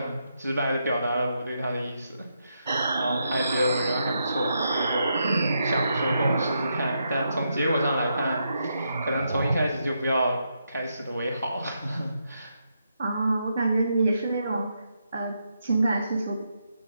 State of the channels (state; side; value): inverted; both; correlation -0.81